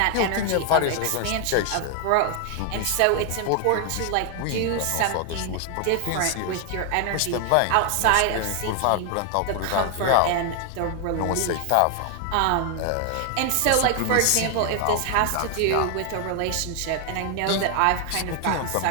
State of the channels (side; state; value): both; different; correlation 0.00